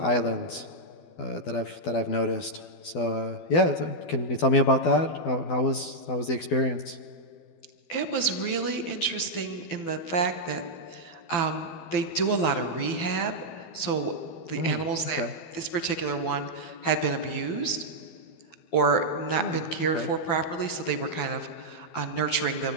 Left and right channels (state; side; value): late; right; 12 ms